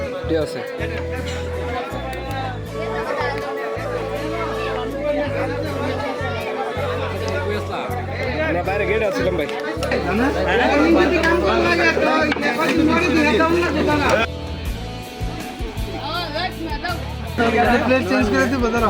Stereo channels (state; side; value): identical; both; correlation 1.00